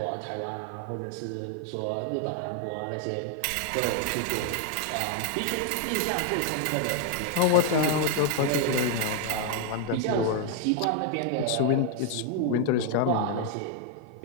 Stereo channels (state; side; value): different; both; correlation 0.00